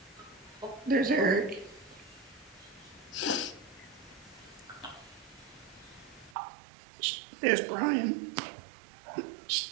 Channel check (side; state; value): left; drops out; at 6.4 s